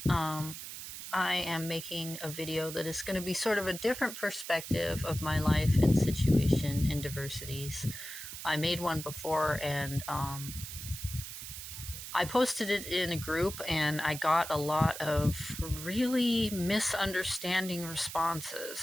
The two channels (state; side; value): noise; right; hiss, 9 dB below the sound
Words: I am making a video that is going to be sort of a different perspective of my life and situation in diversities. I made one before and I posted it in a group and I got a lot of really misunderstanding